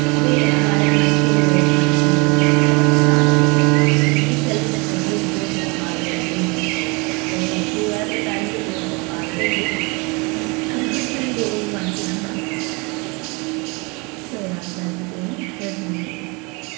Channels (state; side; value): quieter; left; 28.4 dB